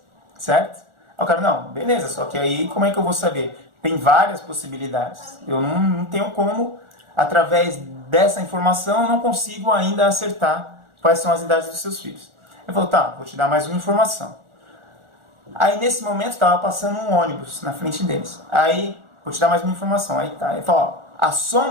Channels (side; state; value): left; late; 1.4 ms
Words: certo? Aí o cara, não, beleza, só que aí como é que eu vou saber? Tem várias possibilidades. Eu não tenho como, através dessa informação, eu não consigo ainda acertar quais são as idades dos seus filhos. Ele falou, vou te dar mais uma informação. Aí nesse momento estava passando um ônibus na frente deles. Aí, vou te dar mais uma informação. Aí tá, ele falou, a